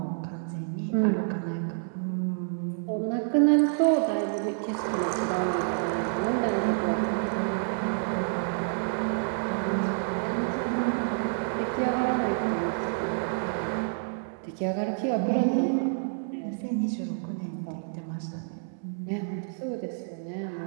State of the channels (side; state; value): left; silent; digital silence